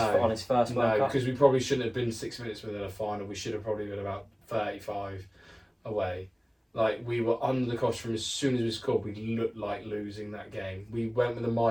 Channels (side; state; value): both; identical; correlation 1.00